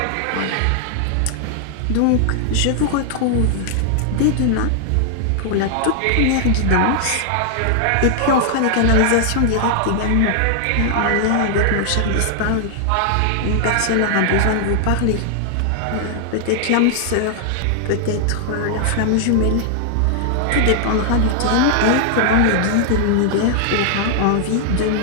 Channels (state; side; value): different; both; correlation 0.00